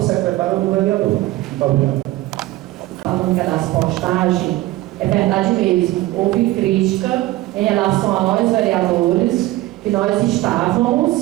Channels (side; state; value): left; quieter; 17.3 dB